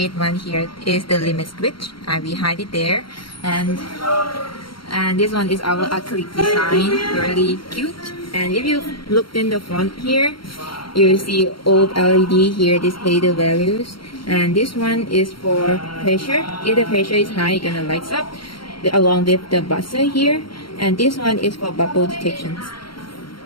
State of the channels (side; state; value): right; late; 0.73 ms